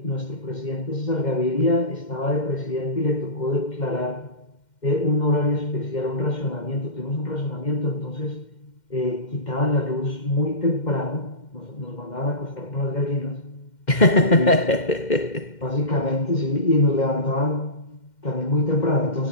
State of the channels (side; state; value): right; late; 2.1 ms